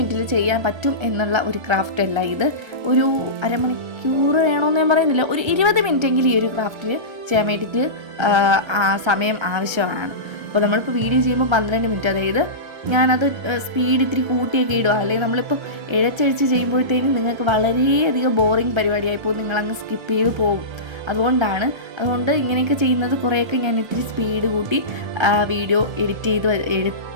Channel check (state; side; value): late; left; 1.3 ms